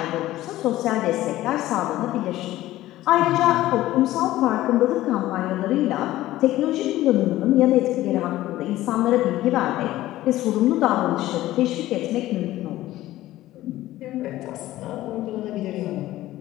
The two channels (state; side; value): quieter; right; 15.5 dB